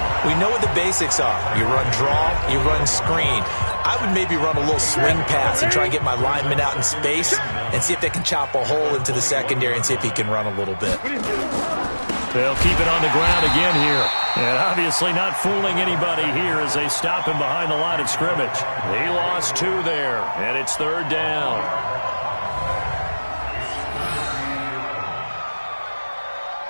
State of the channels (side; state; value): both; inverted; correlation -1.00